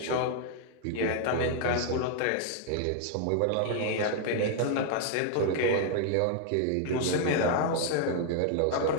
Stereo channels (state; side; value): different; both; correlation 0.00